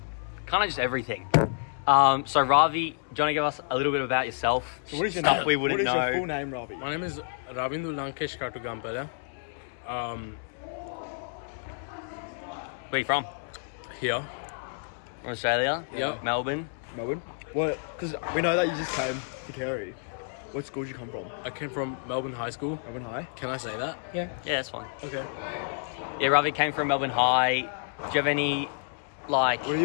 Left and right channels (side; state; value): right; silent; 58 dB below the other